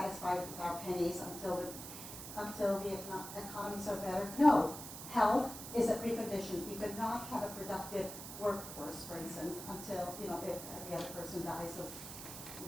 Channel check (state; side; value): noise; right; hiss, 10 dB below the sound